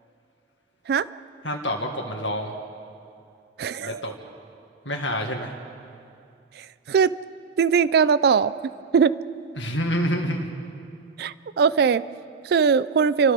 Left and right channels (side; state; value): left; quieter; 4.9 dB